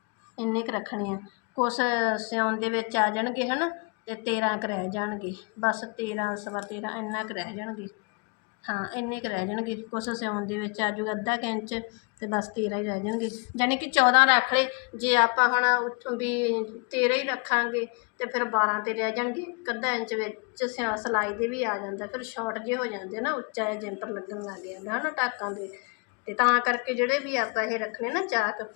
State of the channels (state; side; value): quieter; right; 32.3 dB